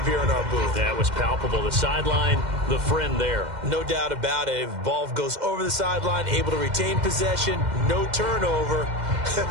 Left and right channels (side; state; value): left; late; 2.1 ms